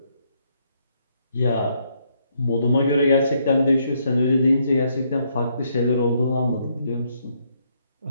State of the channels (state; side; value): inverted; both; correlation -0.73